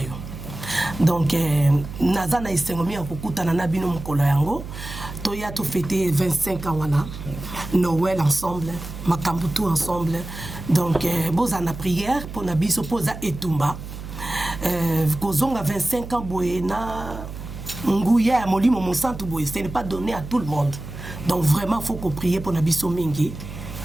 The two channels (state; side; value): noise; right; hum, 11 dB below the sound